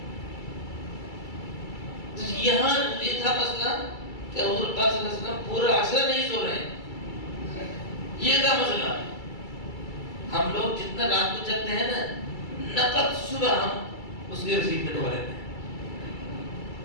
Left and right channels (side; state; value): right; late; 2.3 ms